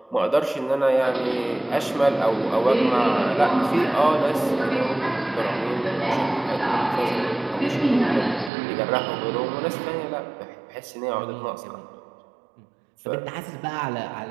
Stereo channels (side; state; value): left; drops out; at 8.5 s